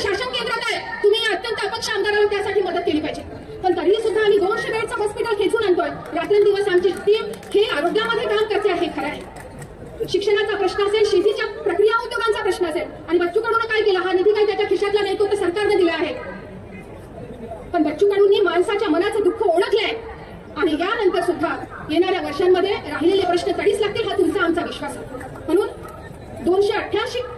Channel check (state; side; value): identical; both; correlation 1.00